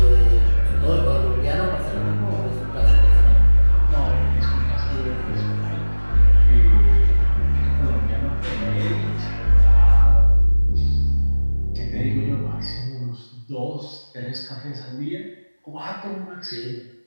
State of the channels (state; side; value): inverted; both; correlation -1.00